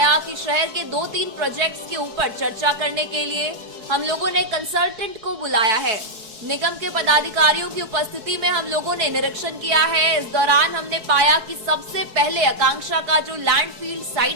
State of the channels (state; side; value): late; left; 4.7 ms